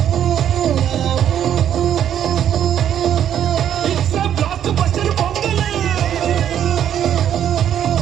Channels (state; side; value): quieter; left; 9.9 dB